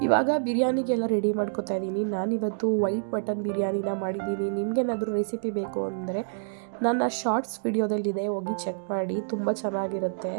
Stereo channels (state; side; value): silent; left; digital silence